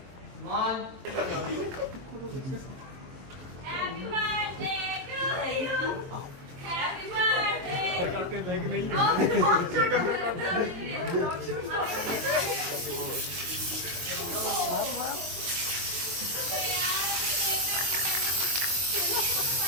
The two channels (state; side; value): late; left; 23 ms